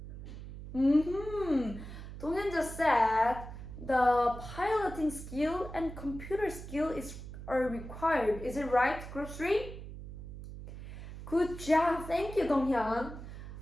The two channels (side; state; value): right; noise; hum, 11 dB below the sound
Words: Donghyun just said the piloting skill and computer skill are required. Is it right, Group 3? Good job. Thank you, Donghyun.